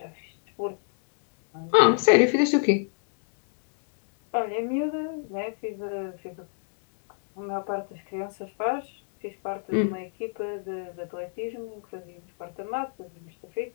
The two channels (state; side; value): silent; right; digital silence